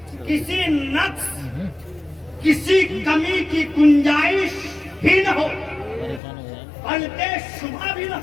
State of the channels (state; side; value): drops out; right; at 6.2 s